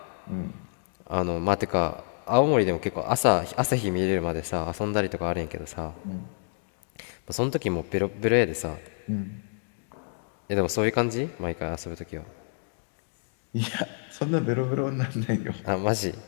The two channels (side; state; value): right; silent; digital silence